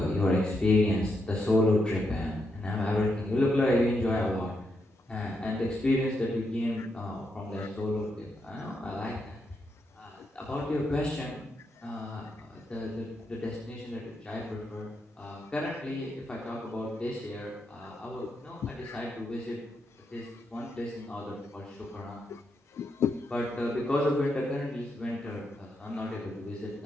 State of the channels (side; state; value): both; normal; correlation 0.82